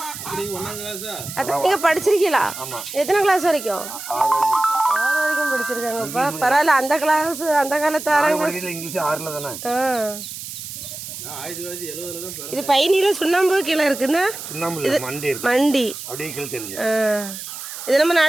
அதான் நீங்க படிச்சிருக்கீங்களா? எத்தனை கிளாஸ் வரைக்கும்? 6 வரைக்கும் படிச்சிருக்காங்கப்பா. பரவாயில்ல. அந்த கிளாஸ் அந்த காலத்து 6ஆம் கிளாஸ் இங்கிலீஷ் 6ல தானே. இது பையனில சுண்ணாம்பு கீழே இருக்குன்னா சுண்ணாம்பு மண்டி அப்படியே கீழே தெரியுது. இது நம்ம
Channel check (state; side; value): noise; right; hiss, 10 dB below the sound